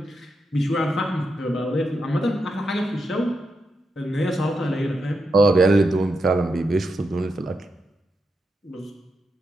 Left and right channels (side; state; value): both; normal; correlation 0.85